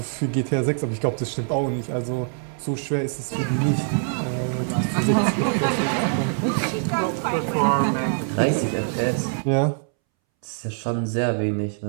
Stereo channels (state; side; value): silent; left; 63 dB below the other